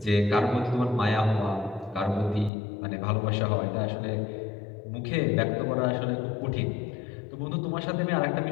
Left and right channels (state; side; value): drops out; right; at 2.5 s